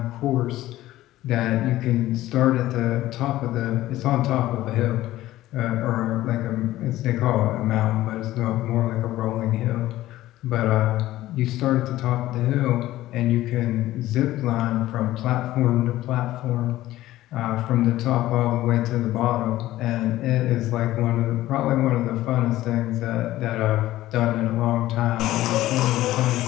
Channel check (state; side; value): quieter; right; 15.4 dB